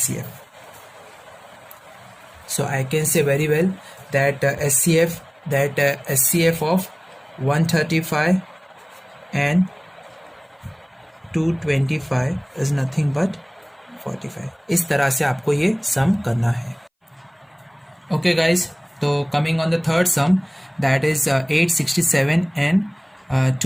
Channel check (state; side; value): identical; both; correlation 1.00